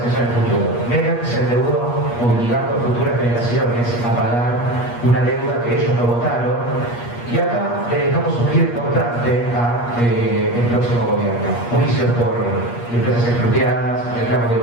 en el futuro. Menem se endeudó obligando a futuras generaciones a pagar una deuda que ellos no votaron, y acá le dejamos un giro importante al próximo gobierno. Juicios por empresas expropiadas, reclamos de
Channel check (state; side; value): late; right; 8.4 ms